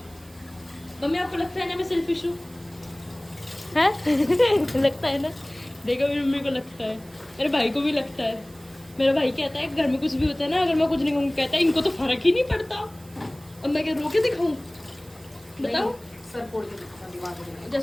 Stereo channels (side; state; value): right; noise; hiss, 25 dB below the sound